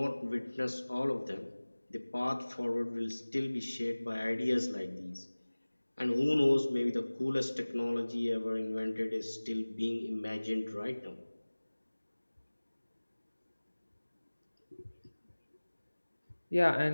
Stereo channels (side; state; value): both; inverted; correlation -1.00